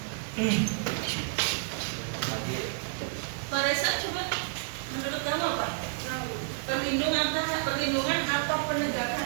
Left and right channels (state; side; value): silent; left; digital silence